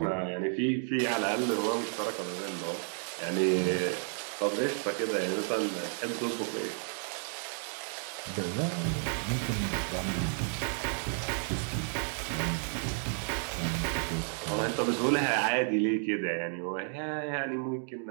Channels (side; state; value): left; silent; 56 dB below the other